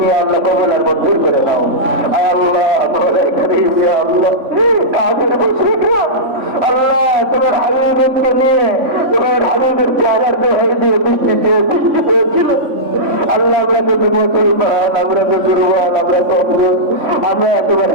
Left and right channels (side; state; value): left; late; 3.5 ms